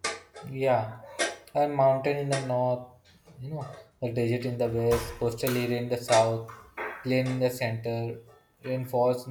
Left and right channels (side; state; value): both; identical; correlation 1.00